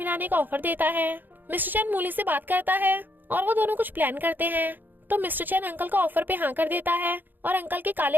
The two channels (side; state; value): left; late; 0.089 ms